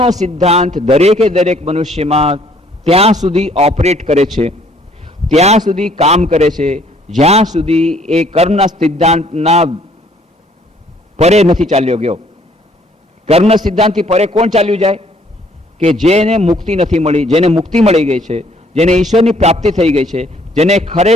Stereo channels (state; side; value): normal; both; correlation 0.62